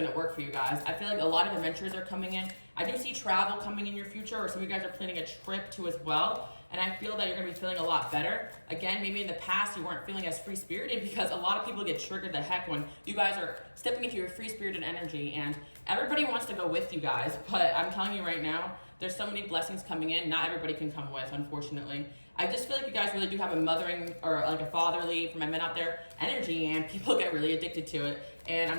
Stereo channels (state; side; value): inverted; both; correlation -1.00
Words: to work for you guys. I feel like a lot of adventures are coming in. I do see travel coming in your future, or some of you guys are planning a trip too as well, and I feel that you're going to be feeling a lot better. Again, maybe in the past you weren't feeling as free-spirited because a lot of people get triggered the heck when you guys are stepping into your free-spirited energy, and everybody wants to go with you guys, but I'm telling you right now, there's so many blessings coming in. Not everybody can come with, unfortunately. I just feel like you guys really do have a mothering or like a fatherly, for my men out there, energy, and people get really addicted to it. And